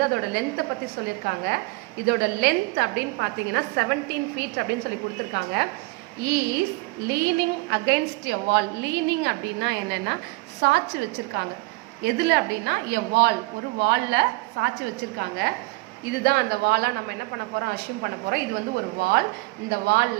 அதோட லென்த்தை பத்தி சொல்லியிருக்காங்க. இதோட லென்த் அப்படின்னு பார்த்தீங்கன்னா 17 feet அப்படின்னு சொல்லி கொடுத்துருக்காங்க. Is leaning against a wall. Leaning அப்படின்னா என்னன்னா சாட்சி வச்சிருக்காங்க. எதுல அப்படின்னா எ வால், ஒரு வால்ல சாட்சி வச்சிருக்காங்க. இதுதான் அந்த வாலா நம்ம என்ன பண்ண போறோம், அஷ்யூம் பண்ண போறோம். இது வந்து ஒரு வால். இந்த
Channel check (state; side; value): quieter; left; 24.0 dB